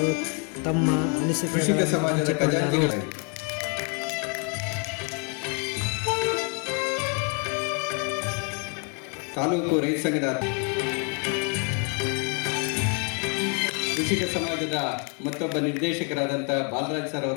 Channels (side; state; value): right; quieter; 36.9 dB